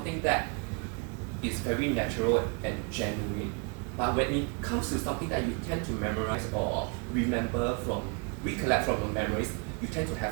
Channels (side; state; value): left; quieter; 33.9 dB